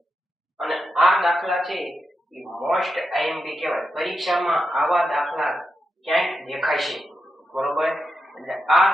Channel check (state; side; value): normal; both; correlation 0.87